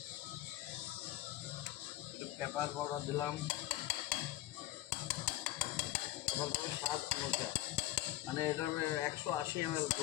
একটু পেপার পাউডার দিলাম, তারপর স্বাদ অনুসার, মানে এটা 180 ml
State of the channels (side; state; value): right; quieter; 15.8 dB